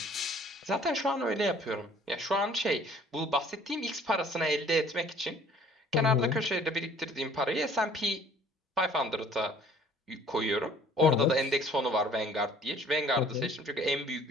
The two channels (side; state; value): both; normal; correlation 0.54